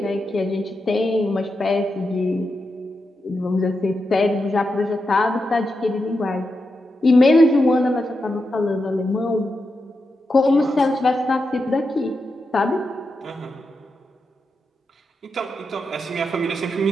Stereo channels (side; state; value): both; normal; correlation 0.87